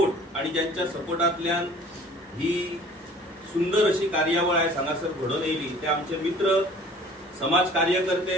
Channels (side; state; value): both; normal; correlation 0.49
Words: आणि ज्यांच्या सपोर्टांतल्यान ही सुंदर अशी कार्यावळ आयज हांगासर घडोवन येयली ते आमचे मित्र, समाज